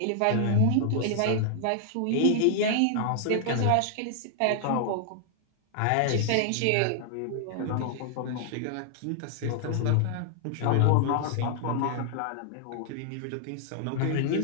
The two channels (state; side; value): different; both; correlation -0.01